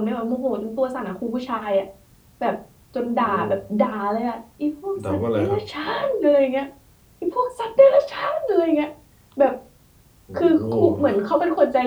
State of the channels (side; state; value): both; identical; correlation 1.00